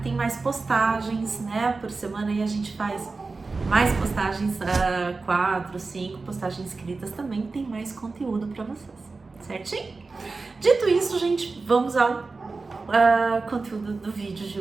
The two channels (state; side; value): quieter; left; 3.9 dB